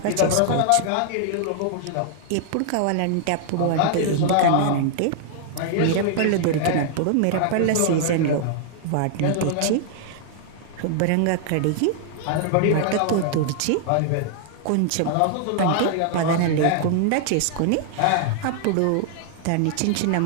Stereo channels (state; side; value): different; both; correlation 0.00